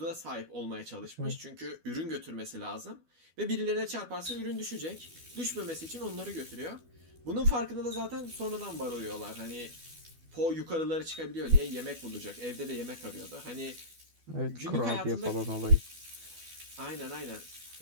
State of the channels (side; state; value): left; late; 12 ms